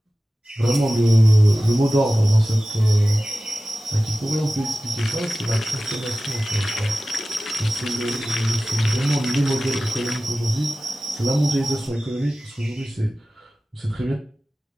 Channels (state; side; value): normal; both; correlation 0.96